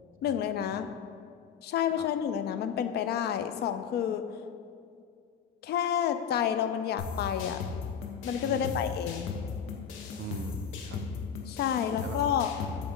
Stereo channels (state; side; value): quieter; right; 7.9 dB